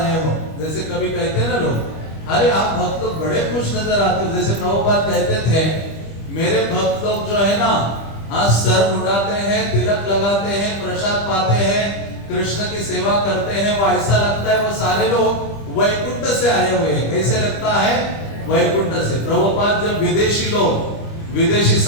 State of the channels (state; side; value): late; right; 25 ms